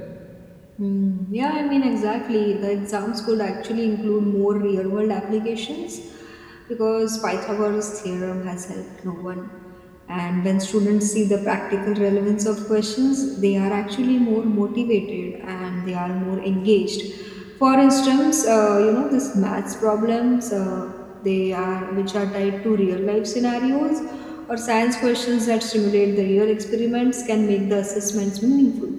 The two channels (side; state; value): both; identical; correlation 1.00